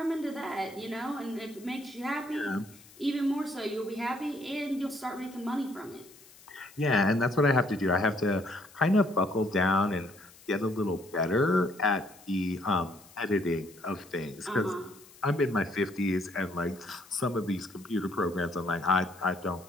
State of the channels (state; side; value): noise; left; hiss, 23 dB below the sound